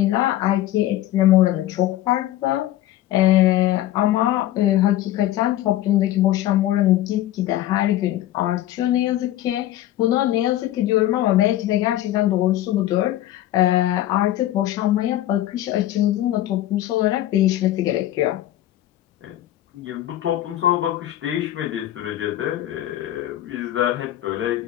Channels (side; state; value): right; quieter; 13.8 dB